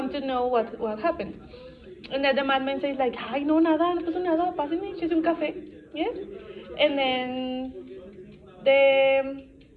to know what happened. And then the madman says like, ay, no, nada, no pasó nada, pásenme, échese un café. Yes? And then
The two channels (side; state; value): both; identical; correlation 1.00